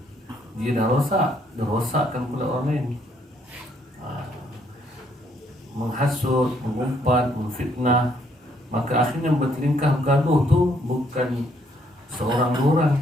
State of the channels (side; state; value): both; normal; correlation 0.69